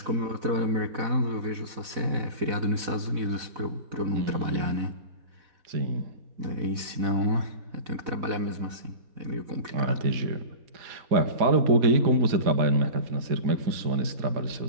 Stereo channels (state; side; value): late; left; 4.0 ms